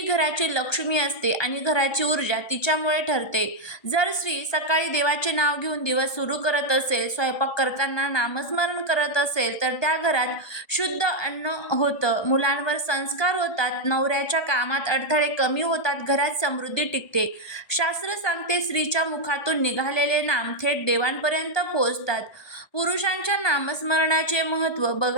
घराची लक्ष्मी असते आणि घराची ऊर्जा तिच्यामुळे ठरते. जर स्त्री सकाळी देवाचे नाव घेऊन दिवस सुरू करत असेल, स्वयंपाक करताना नामस्मरण करत असेल, तर त्या घरात शुद्ध अन्न होतं, मुलांवर संस्कार होतात, नवऱ्याच्या कामात अडथळे कमी होतात, घरात समृद्धी टिकते. शास्त्र सांगते स्त्रीच्या मुखातून निघालेले नाम थेट देवांपर्यंत पोहोचतात. पुरुषांच्या नामस्मरणाचे महत्त्व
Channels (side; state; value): right; late; 1.2 ms